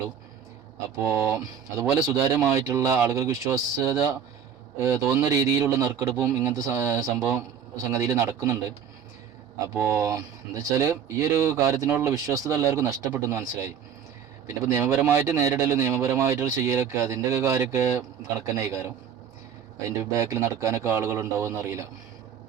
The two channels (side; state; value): left; quieter; 8.0 dB